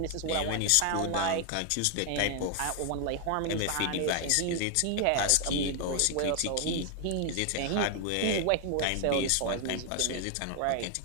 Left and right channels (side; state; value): both; different; correlation 0.00